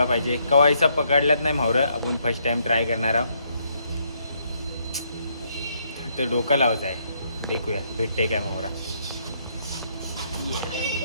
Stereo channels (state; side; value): inverted; both; correlation -0.72